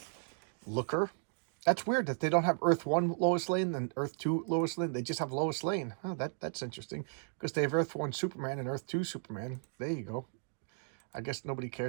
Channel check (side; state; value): left; silent; digital silence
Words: Looker. That's weird that they don't have Earth 1 Lois Lane and Earth 2 Lois Lane. They just have Lois Lane. Oh, that's interesting, because they have Earth 1 Superman and Earth 2 Superman. There you go. I guess nobody